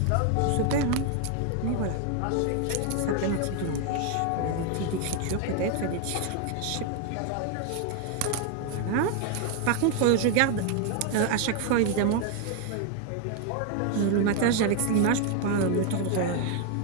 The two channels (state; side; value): different; both; correlation 0.01